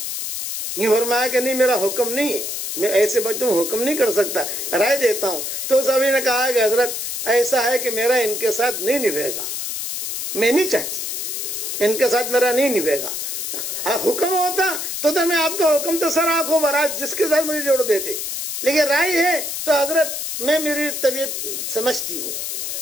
نہیں فرمایا کہ نہیں میرا حکم نہیں ہے، میں ایسے بچوں حکم نہیں کر سکتا، رائے دیتا ہوں۔ تو صحابی نے کہا کہ حضرت ایسا ہے کہ میرا ان کے ساتھ نہیں نبھے گا، میں نہیں چاہتی، ان کے ساتھ میرا نہیں نبھے گا۔ حکم ہوتا تو میں آپ کا حکم تو سر آنکھوں برات جس کے ساتھ مجھے جوڑ دیتے، لیکن رائے ہے تو حضرت میں میری طبیعت سمجھتی ہوں،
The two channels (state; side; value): noise; left; hiss, 4 dB below the sound